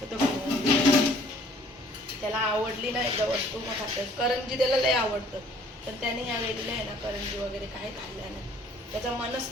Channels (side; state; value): both; normal; correlation 0.57